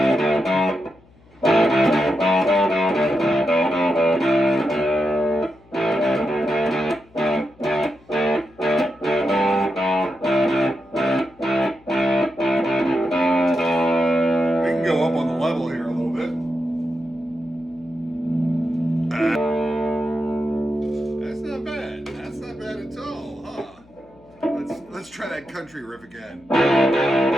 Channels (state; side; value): noise; left; hum, 28 dB below the sound